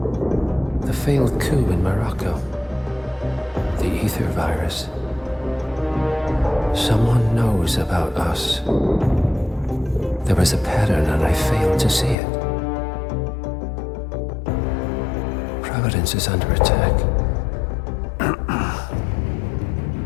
the failed coup in Morocco, the ether virus. Someone knows about us. There was a pattern and I failed to see it. Providence is under attack.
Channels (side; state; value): right; drops out; at 12.2 s